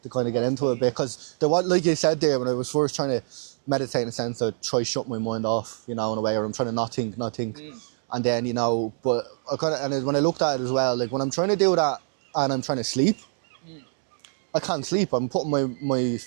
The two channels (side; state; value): left; silent; 61 dB below the other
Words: to kind of get into it, because there was, like you said there, when I was first trying to meditate, in a sense, I'd try shutting my mind off, you know, in a way, or I'm trying to not think, and then, you know, but I kind of, and when I looked at it as well, like when I'm trying to do that and I'm trying to sleep, I can't sleep. I'm putting my